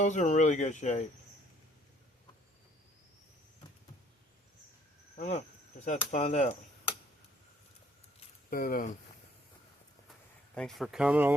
are in really good shape. I don't know, just have to find out. But thanks for coming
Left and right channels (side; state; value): both; normal; correlation 0.62